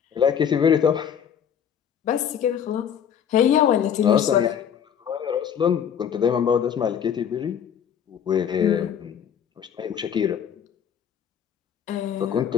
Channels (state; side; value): quieter; right; 8.4 dB